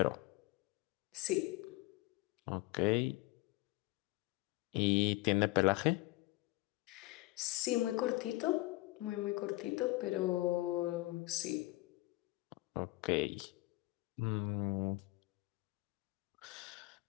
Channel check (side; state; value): right; quieter; 20.3 dB